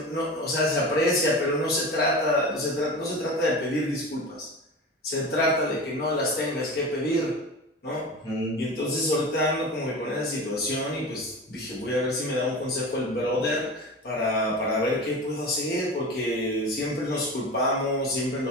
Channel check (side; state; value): both; normal; correlation 0.31